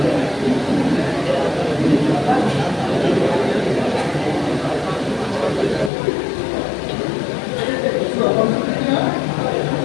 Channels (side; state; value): right; drops out; at 5.9 s